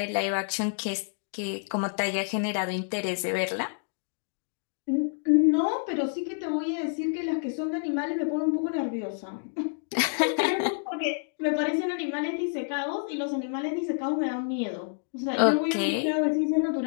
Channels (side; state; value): right; silent; digital silence